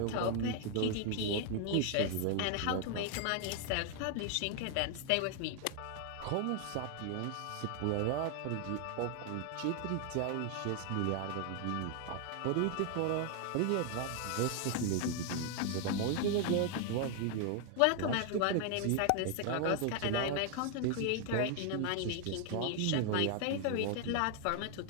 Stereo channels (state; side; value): different; both; correlation 0.00